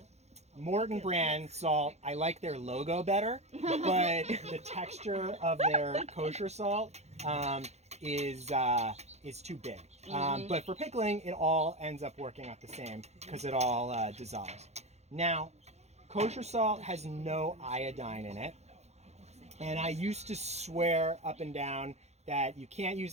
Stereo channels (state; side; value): late; left; 0.32 ms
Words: Morton brand salt. I like their logo better, but the texture of their kosher salt is too big. But for pickling, it all ends up working out the same because it all dissolves. Now, kosher salt has no iodine in it. And I used to swear up and down that you can't use